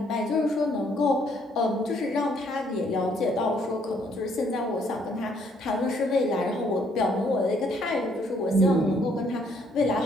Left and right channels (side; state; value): both; normal; correlation 0.67